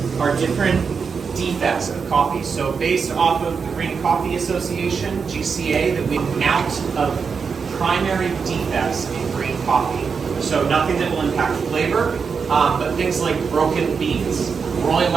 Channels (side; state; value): left; quieter; 5.7 dB